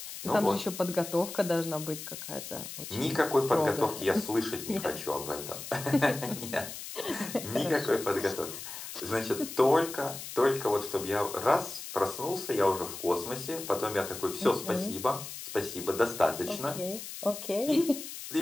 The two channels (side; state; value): left; noise; hiss, 10 dB below the sound